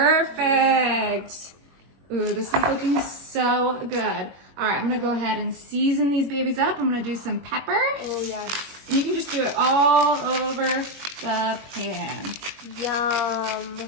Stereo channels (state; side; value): late; left; 21 ms